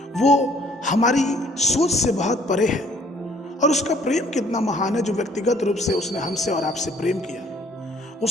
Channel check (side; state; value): both; normal; correlation 0.60